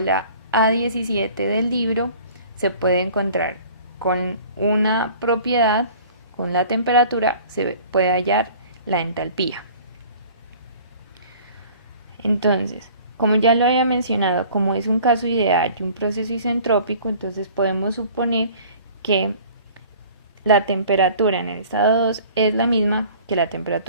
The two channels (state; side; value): inverted; both; correlation -0.48